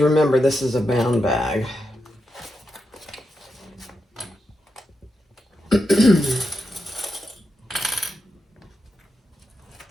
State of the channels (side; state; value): both; normal; correlation 0.86